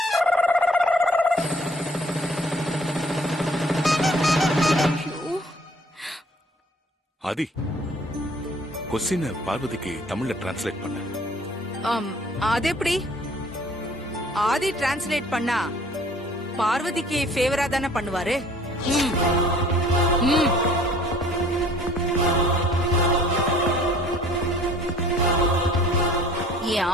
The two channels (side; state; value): both; normal; correlation 0.54